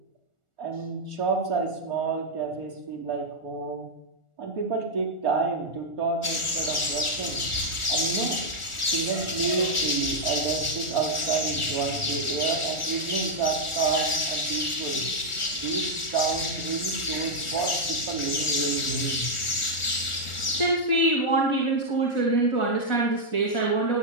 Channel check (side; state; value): right; late; 1.4 ms